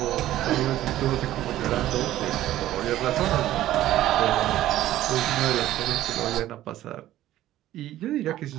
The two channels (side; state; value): left; quieter; 13.9 dB